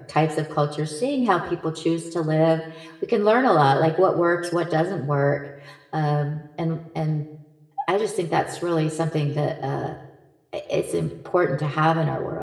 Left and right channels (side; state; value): both; identical; correlation 1.00